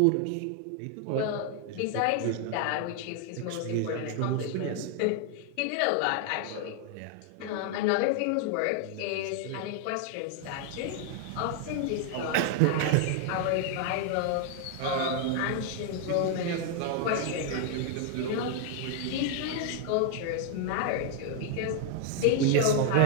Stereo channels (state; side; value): different; both; correlation 0.00